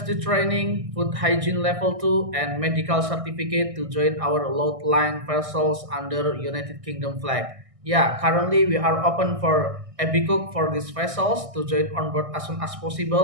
training, food hygiene level 2, and medical certificate to join our Loadline vessels under United Kingdom flag. Yeah, currently we are open for a be cook for these vessels to join on board as soon as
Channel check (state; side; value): late; left; 1.6 ms